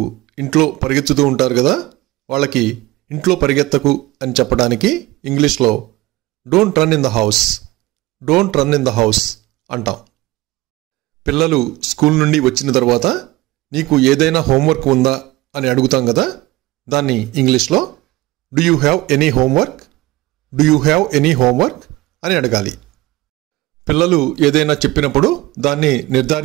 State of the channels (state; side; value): quieter; left; 19.0 dB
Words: ఇంట్లో పరిగెత్తుతూ ఉంటారు కదా, వాళ్ళకి ఇంట్లో పరిగెత్తకు అని చెప్పడానికి ఇంగ్లీష్లో don't run in the house. Don't run in the house అంటాం. పిల్లలు స్కూల్ నుండి వచ్చిన తర్వాత నీకు ఏదైనా హోంవర్క్ ఉందా అని అడుగుతాం కదా, దాన్ని ఇంగ్లీష్లో do you have any homework? Do you have any homework అని అడగాలి. పిల్లలు ఏదైనా చెప్పినప్పుడు దాన్ని